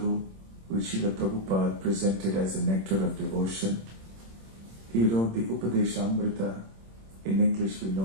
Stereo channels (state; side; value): late; left; 26 ms